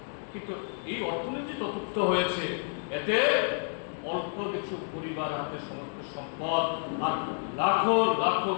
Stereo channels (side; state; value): right; silent; 58 dB below the other